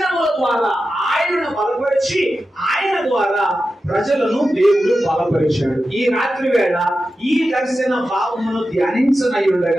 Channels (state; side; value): normal; both; correlation 0.92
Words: ద్వారా ఆయనను బలపరిచి ఆయన ద్వారా ప్రజలను దేవుడు బలపరిచాడు. ఈ రాత్రి వేళ ఈ దర్శన భావమును ధ్యానించనై